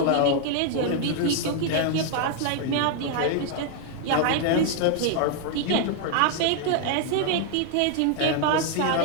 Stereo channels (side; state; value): both; different; correlation 0.00